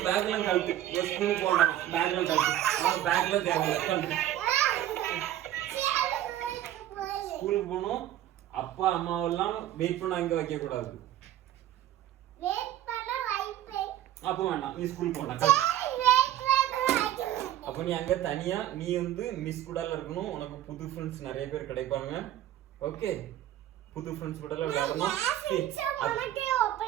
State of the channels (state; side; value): quieter; left; 12.6 dB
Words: பேக்லாம் கழுத்து. ஸ்கூலுக்கு போகலாமா? பேக்லாம் கழுத்து. அவன் பேக்ல கழுத்து. ஸ்கூலுக்கு போகணும். அப்பா அம்மாவெல்லாம் வெயிட் பண்ண அங்க வைக்க கூடாது. அப்போ வேண்டாம், நீ ஸ்கூல் போனா. அப்ப நீ அங்க தனியா நீ வந்து மிஸ் கூட இருக்கணும். உனக்கு புது ஃப்ரெண்ட்ஸ் நிறைய பேர் கிடைப்பாங்க. ஓகே, புது ஃப்ரெண்ட்ஸ் கூட விளையாடணும்.